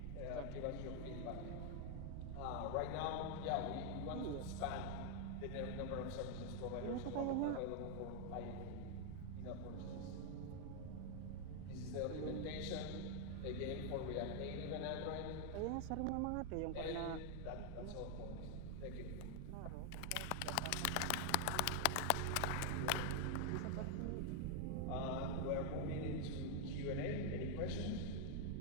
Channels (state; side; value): different; both; correlation 0.00